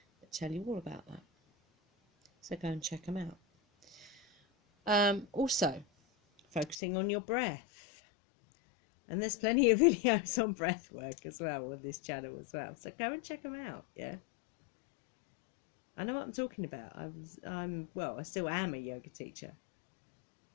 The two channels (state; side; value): drops out; right; at 6.8 s